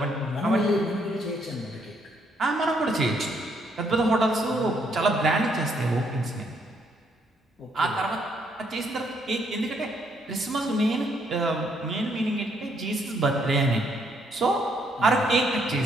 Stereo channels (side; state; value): both; normal; correlation 0.71